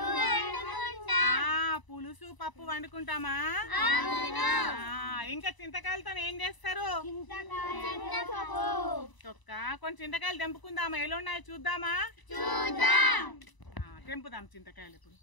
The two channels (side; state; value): right; late; 1.0 ms